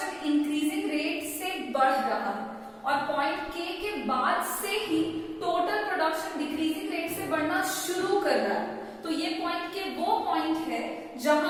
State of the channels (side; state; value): both; identical; correlation 1.00